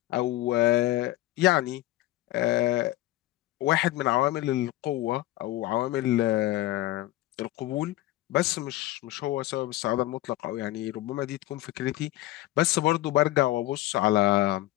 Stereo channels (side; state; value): right; quieter; 16.4 dB